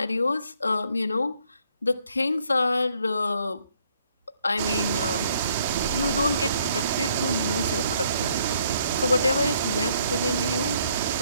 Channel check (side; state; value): both; inverted; correlation -0.67